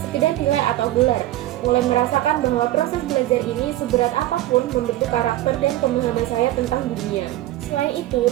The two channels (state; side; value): quieter; left; 15.2 dB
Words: nilai atau gelar, mulai merasakan bahwa proses belajar ini seberat apapun membentuk karakter dan pemahaman saya tentang dunia. Selain itu,